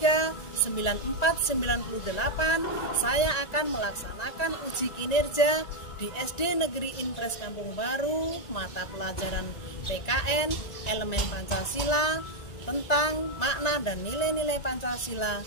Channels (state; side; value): late; right; 1.9 ms